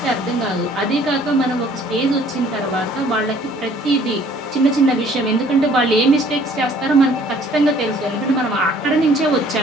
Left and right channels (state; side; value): normal; both; correlation 0.57